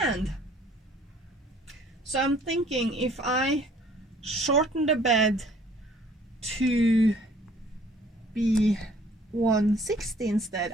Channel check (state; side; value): normal; both; correlation 0.56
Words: So I'm thinking if I shorten the bed to be 160 instead.